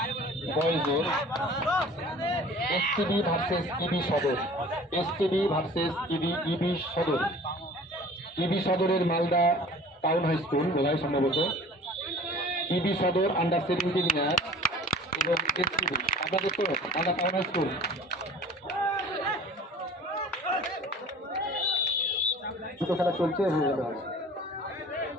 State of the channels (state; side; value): normal; both; correlation 0.45